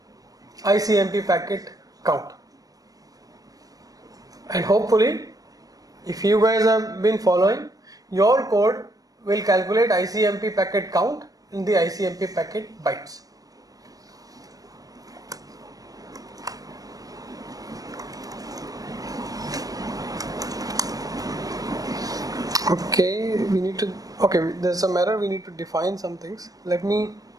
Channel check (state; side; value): late; left; 0.18 ms